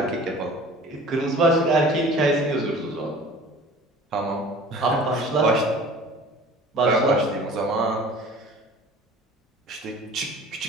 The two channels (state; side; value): normal; both; correlation 0.45